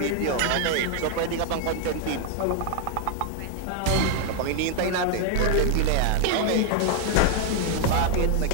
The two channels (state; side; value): different; both; correlation 0.01